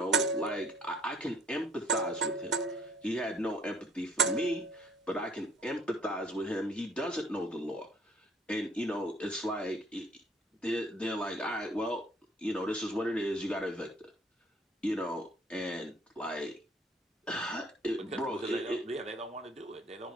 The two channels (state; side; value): normal; both; correlation 0.59